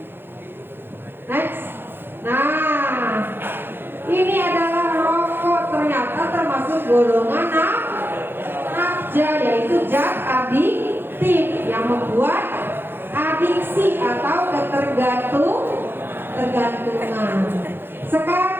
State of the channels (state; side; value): late; left; 0.10 ms